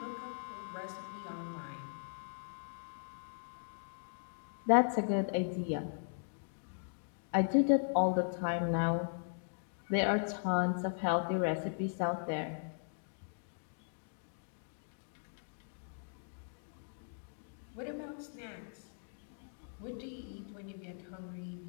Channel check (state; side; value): silent; right; digital silence